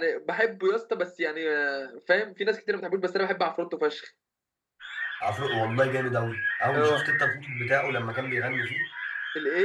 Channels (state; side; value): identical; both; correlation 1.00